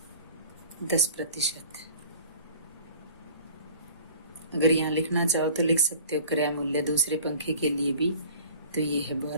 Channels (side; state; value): both; inverted; correlation -0.45